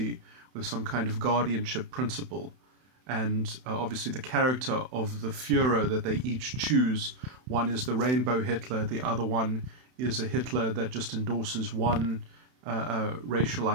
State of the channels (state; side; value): late; left; 31 ms